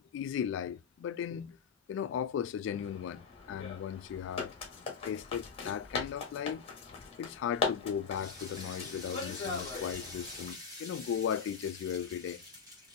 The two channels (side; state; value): right; quieter; 6.8 dB